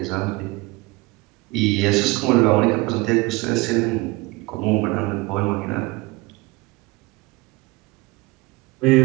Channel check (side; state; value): left; quieter; 23.2 dB